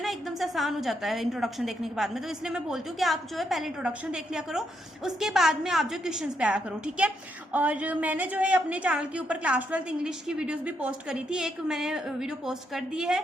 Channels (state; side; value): normal; both; correlation 0.78